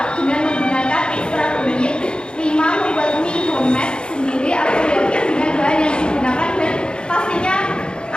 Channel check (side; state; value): right; late; 0.051 ms